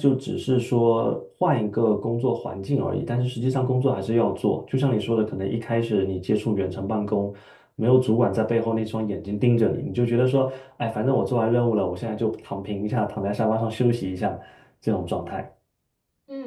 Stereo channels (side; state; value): both; identical; correlation 1.00